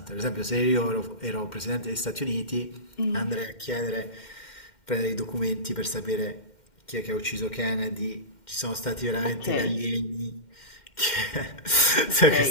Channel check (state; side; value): late; right; 2.1 ms